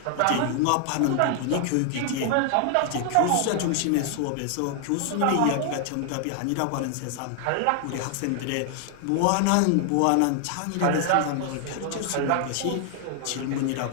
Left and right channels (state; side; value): different; both; correlation 0.00